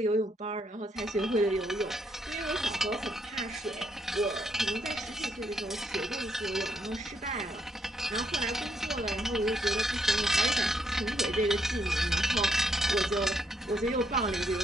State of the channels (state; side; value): normal; both; correlation 0.75